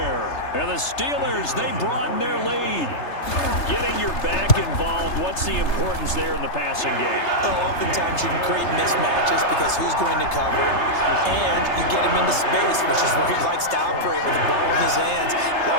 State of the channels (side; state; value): right; late; 3.3 ms